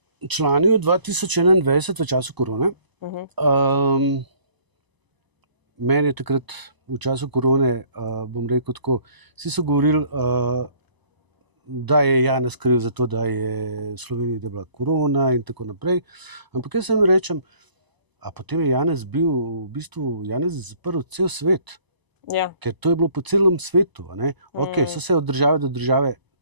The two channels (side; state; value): left; late; 1.0 ms